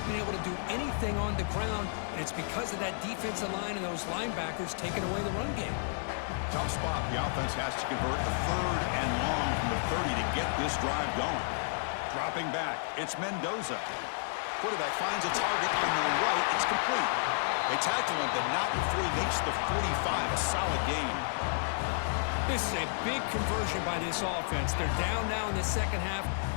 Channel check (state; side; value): silent; right; 57 dB below the other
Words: been able to do anything on the ground, and it's because of that defensive line and those linebackers taking away the run game. Tough spot. The offense has to convert the third and long from the 30 to get this drive going. Dropping back, it's Mendoza. Quarterback finds a target on the right. It's complete. They tackle him, but not before he makes the 45. A solid gain. This is a big conversion by this offense. They're down now in the second half.